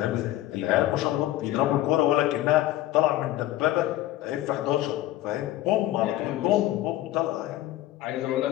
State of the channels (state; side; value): quieter; right; 15.0 dB